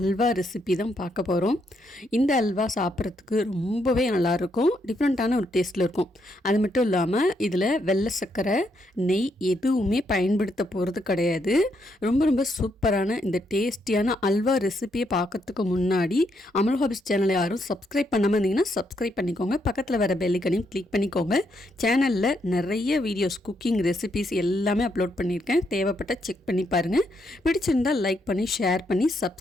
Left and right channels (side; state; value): both; normal; correlation 0.77